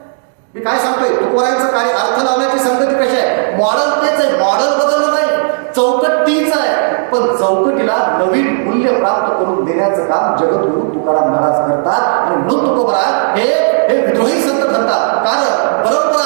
मी काय सांगतोय, तुकोबारायांचं कार्य अर्थ लावण्याची संगती कशी आहे, मॉडेल तेच आहे, मॉडेल बदललं नाही, चौकट तीच आहे, पण चौकटीला नवीन मूल्य प्राप्त करून देण्याचं काम जगद्गुरु तुकाराम महाराज करतात. आणि म्हणून तुकोबाराय हे विद्रोही संत ठरतात. कारण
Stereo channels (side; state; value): left; silent; digital silence